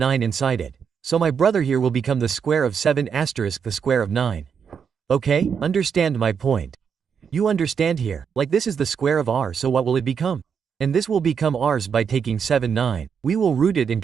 inside it. So my brother here will become the square of 7 asterisk the square of 9. Okay, understand my point. You understand here, like this is the square of r, so what will it become? And this will become r's by taking 7, 9. We will root it and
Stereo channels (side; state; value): left; quieter; 6.8 dB